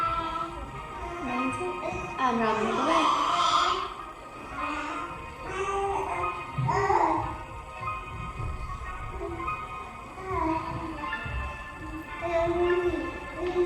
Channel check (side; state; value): both; identical; correlation 1.00